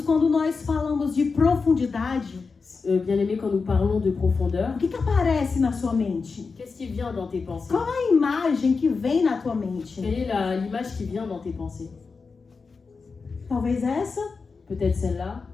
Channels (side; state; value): right; quieter; 4.7 dB